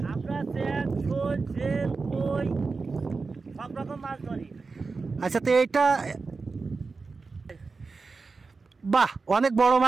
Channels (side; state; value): left; quieter; 4.3 dB